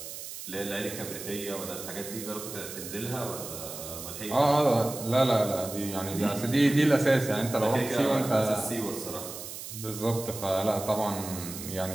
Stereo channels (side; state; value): right; noise; hiss, 10 dB below the sound